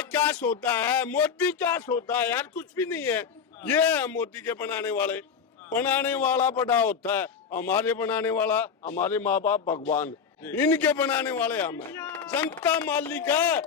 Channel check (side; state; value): right; quieter; 6.5 dB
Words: क्या सोता है मोदी, क्या सोता है यार, कुछ भी नहीं है। ये है मोदी के बनाने वाले, बनाने वाला बड़ा होता है, हमारे बनाने वाला हमारे माँ बाप भगवान, इनके बनाने वाले हम हैं। जनता मालिक है,